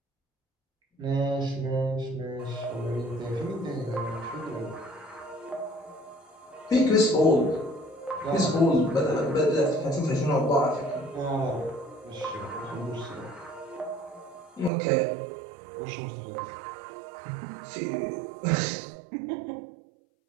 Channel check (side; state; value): left; drops out; at 14.7 s